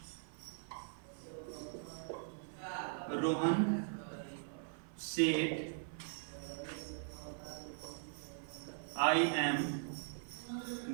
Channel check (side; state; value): left; silent; 51 dB below the other